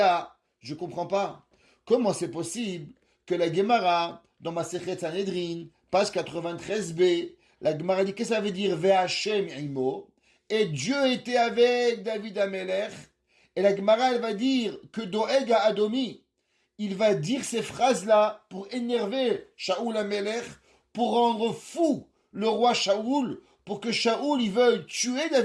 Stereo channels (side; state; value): both; identical; correlation 1.00